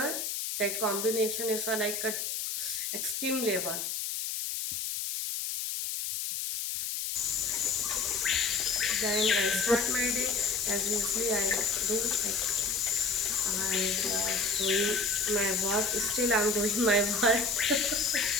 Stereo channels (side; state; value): left; noise; hiss, 3 dB below the sound